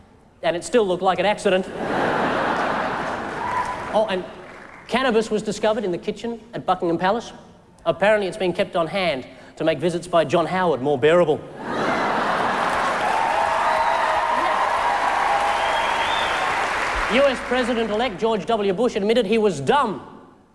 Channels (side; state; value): both; identical; correlation 1.00